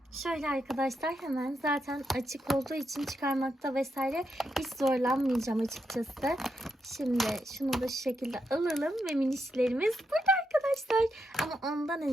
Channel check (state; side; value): normal; both; correlation 0.83